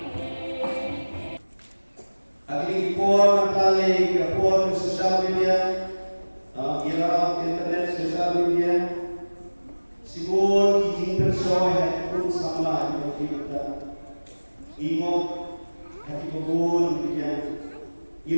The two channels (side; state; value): both; inverted; correlation -1.00